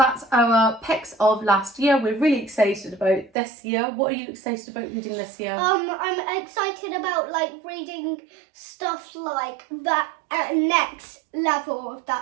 our picks of last year. We're really excited about this year. What are you excited about reading this year? I'm excited about reading stuff like that at next level of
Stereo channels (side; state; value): left; drops out; at 3.3 s